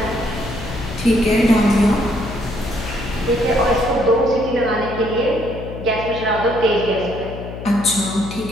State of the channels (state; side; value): noise; left; hum, 10 dB below the sound